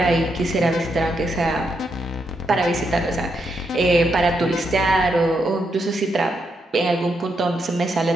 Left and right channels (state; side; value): normal; both; correlation 0.80